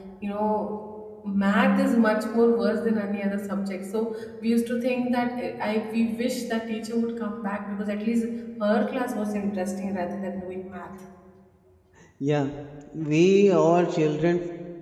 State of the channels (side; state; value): both; identical; correlation 1.00